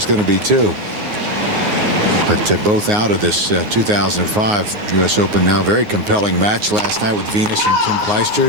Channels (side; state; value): left; late; 9.6 ms